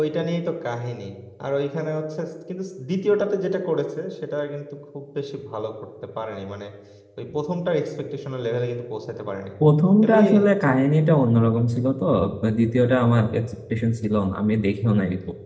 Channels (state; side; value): identical; both; correlation 1.00